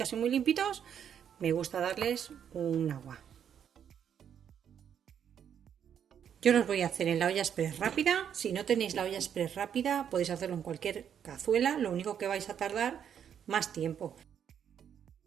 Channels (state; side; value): quieter; left; 8.6 dB